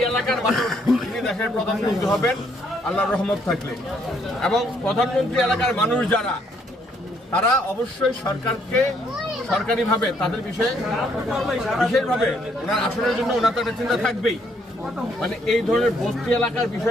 এলাকার মানুষ, উনি দেশের প্রধানমন্ত্রী হবেন আল্লাহর রহমত থাকলে। এবং প্রধানমন্ত্রী এলাকার মানুষ যারা, তারা অবশ্যই সরকারকে সরকারিভাবে তাদের বিষয়ে বিশেষভাবে ওনার আসনের জন্য ওনার তো একটা চিন্তা থাকবেই। মানে এই ধরনের বস্তি এলাকার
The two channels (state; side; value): normal; both; correlation 0.69